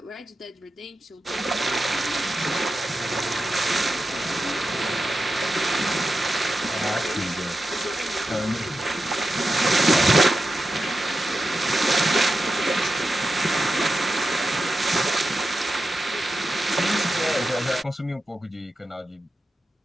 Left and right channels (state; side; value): normal; both; correlation 0.90